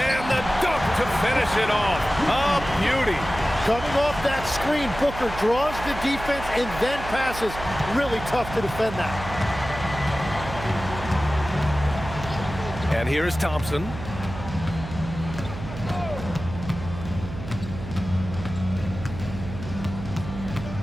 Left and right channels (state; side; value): noise; right; hum, 10 dB below the sound